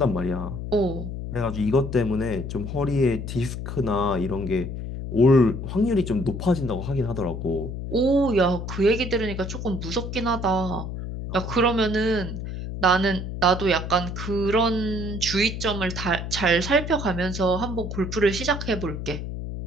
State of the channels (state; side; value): noise; left; hum, 6 dB below the sound